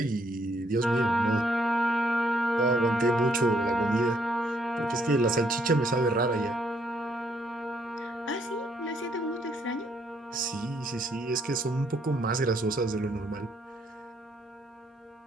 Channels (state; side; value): normal; both; correlation 0.70